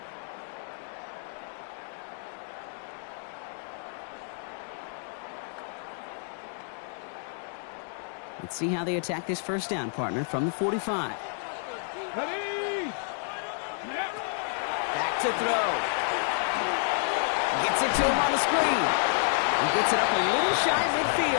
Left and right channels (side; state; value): right; silent; 58 dB below the other